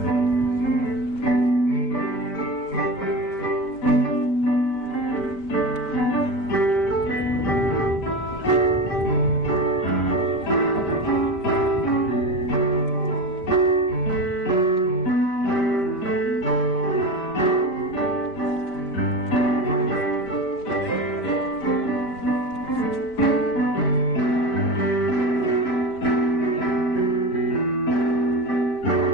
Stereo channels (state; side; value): late; right; 5.1 ms